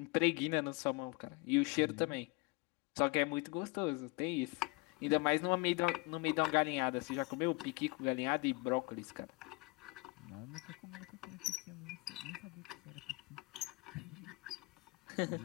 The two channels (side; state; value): right; quieter; 26.4 dB